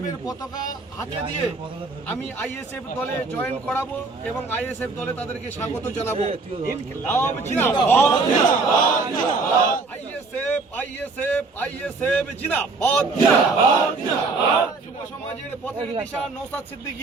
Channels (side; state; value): left; quieter; 3.9 dB